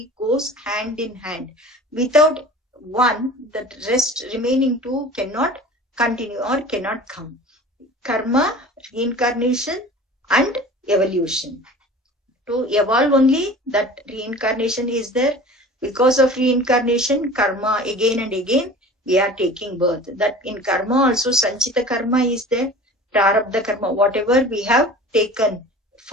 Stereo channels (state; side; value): normal; both; correlation 0.41